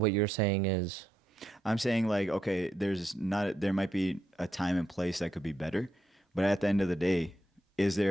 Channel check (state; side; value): normal; both; correlation 0.81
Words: you're saying is, I'm saying like, okay, there might be a time and place that could be better, but at the end of the day, is